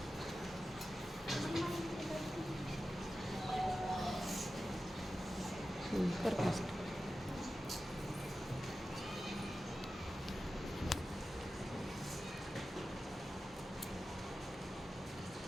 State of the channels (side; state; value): both; normal; correlation 0.93